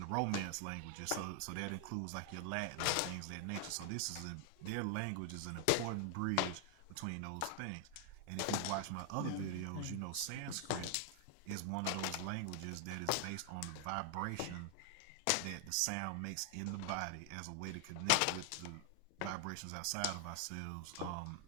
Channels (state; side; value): different; both; correlation 0.00